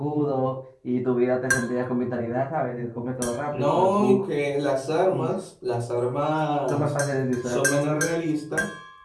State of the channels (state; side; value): identical; both; correlation 1.00